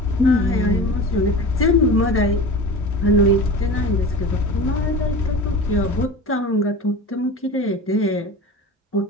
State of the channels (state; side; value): normal; both; correlation 0.33